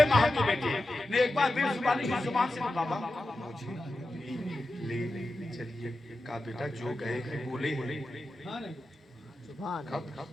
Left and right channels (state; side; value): normal; both; correlation 0.92